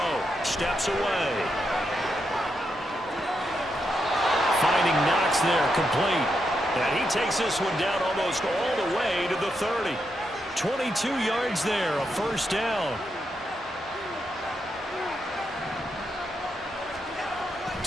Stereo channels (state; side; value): normal; both; correlation 0.83